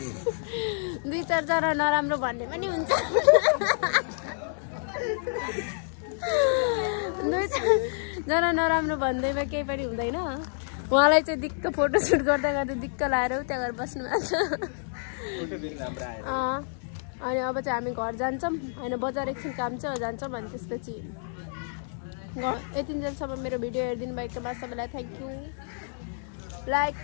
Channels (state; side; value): silent; right; digital silence